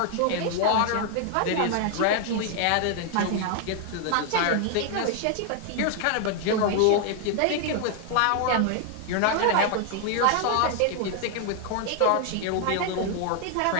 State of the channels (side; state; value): both; different; correlation 0.00